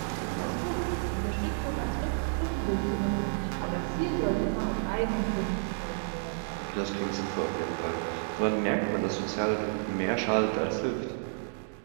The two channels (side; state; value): left; silent; digital silence